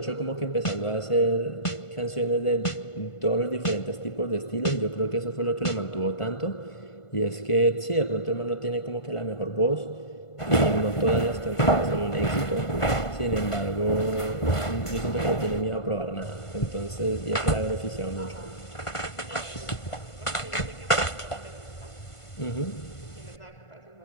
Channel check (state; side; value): late; right; 1.5 ms